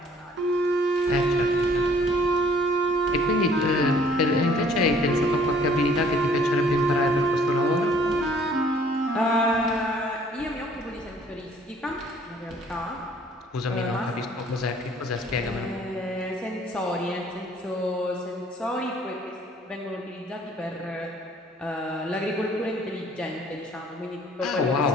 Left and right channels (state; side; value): normal; both; correlation 0.58